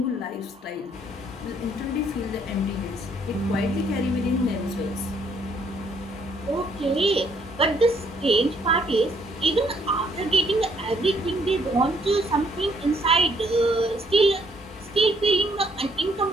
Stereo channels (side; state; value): both; normal; correlation 0.67